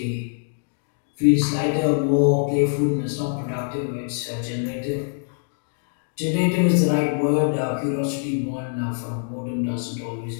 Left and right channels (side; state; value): right; silent; 63 dB below the other